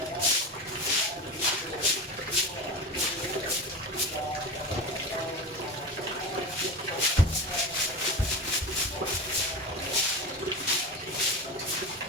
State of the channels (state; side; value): normal; both; correlation 0.25